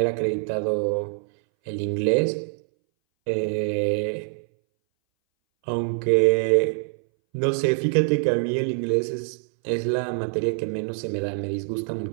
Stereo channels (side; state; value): left; silent; 60 dB below the other